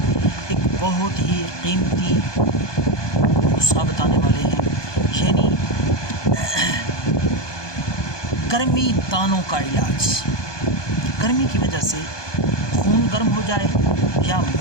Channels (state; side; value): late; right; 1.2 ms